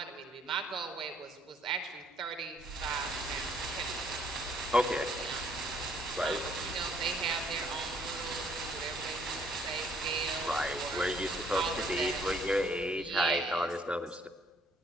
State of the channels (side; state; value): both; normal; correlation 0.64